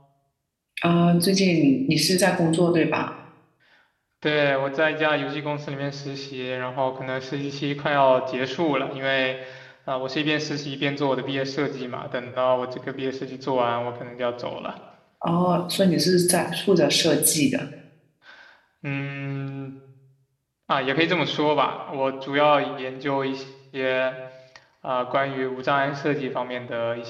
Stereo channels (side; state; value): both; identical; correlation 1.00